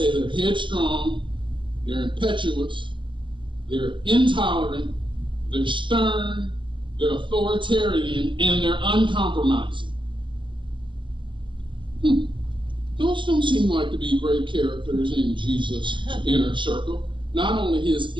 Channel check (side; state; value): left; late; 0.24 ms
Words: they're headstrong, they're impetuous, they're intolerant, they're stern, they're authoritarian, and they're uncompromising. Those don't seem like to be great characters in Jesus' inner circle. Not only his